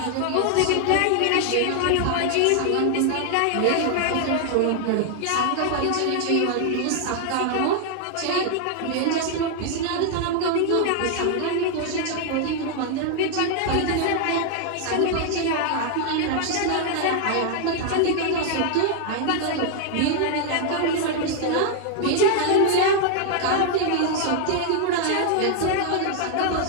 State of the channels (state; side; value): different; both; correlation 0.00